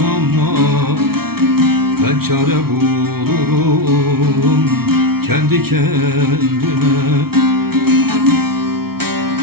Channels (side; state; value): left; late; 0.95 ms